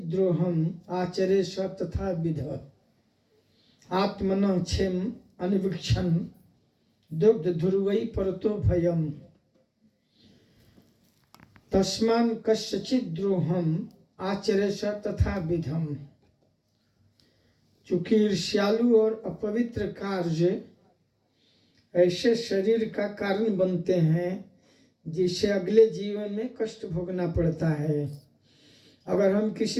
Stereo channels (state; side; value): identical; both; correlation 1.00